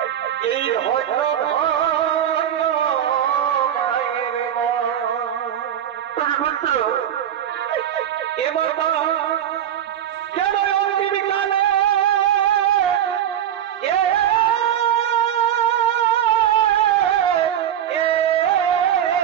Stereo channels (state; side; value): quieter; left; 10.2 dB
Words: এই হয়তো পুত্র এবার কেন অন্তিম কালে